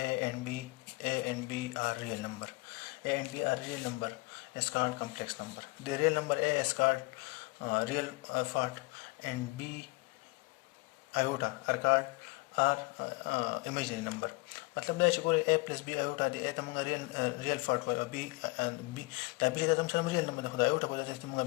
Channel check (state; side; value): quieter; right; 25.0 dB